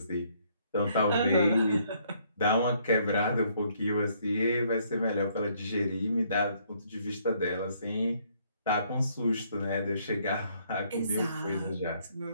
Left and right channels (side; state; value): both; inverted; correlation -0.67